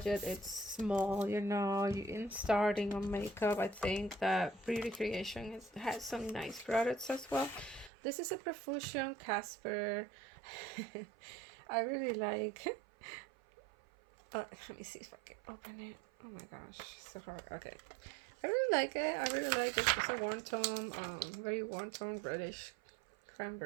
it's small, you know, you in starting on makeup, I think that beauty creation has some nice products as well. This is a Profusion Casper. I really like let me see if I can open it. Oh my gosh, so hard. Okay, I really like it. I really like it. It's a warm tone, very warm tone reddish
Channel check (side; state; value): left; drops out; at 7.9 s